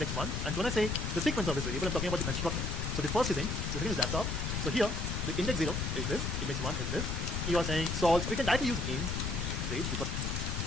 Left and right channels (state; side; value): noise; left; rumble, 1 dB below the sound